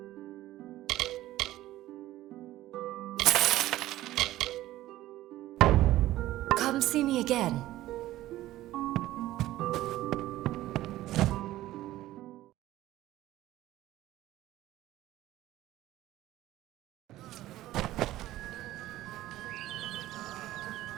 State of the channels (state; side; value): quieter; left; 15.3 dB